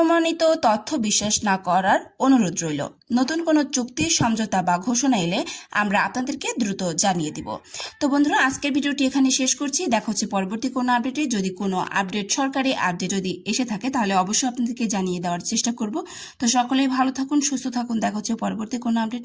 তথ্য বিশ্বাস না করার অনুরোধ রইল। নতুন কোনো চুক্তি, সমঝোতা বা ঘোষণা এলে আমরা আপনাদেরকে দ্রুত জানিয়ে দিব। তো বন্ধুরা, আজকের ভিডিওটি এখানে শেষ করছি। দেখা হচ্ছে পরবর্তী কোনো আপডেটে। যদি কোনো আপডেট, সরকারি আপডেট যদি এসে থাকে, তাহলে অবশ্যই আপনাদেরকে জানিয়ে দেওয়ার চেষ্টা করব। তো সকলেই ভালো থাকুন, সুস্থ থাকুন। দেখা হচ্ছে পরবর্তী কোনো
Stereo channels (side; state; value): both; identical; correlation 1.00